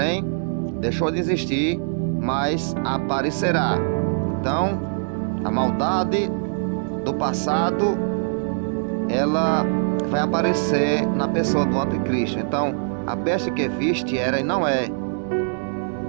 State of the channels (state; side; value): silent; left; digital silence